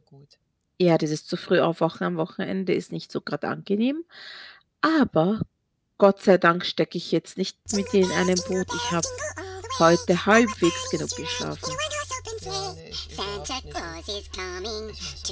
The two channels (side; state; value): both; identical; correlation 1.00